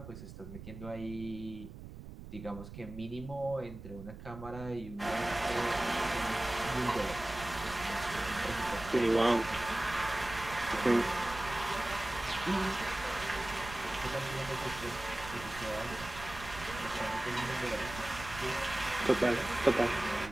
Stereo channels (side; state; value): right; noise; rumble, 13 dB below the sound